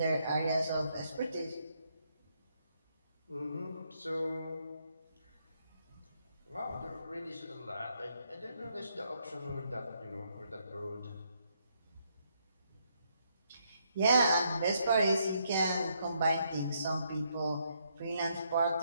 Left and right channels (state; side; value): inverted; both; correlation -0.74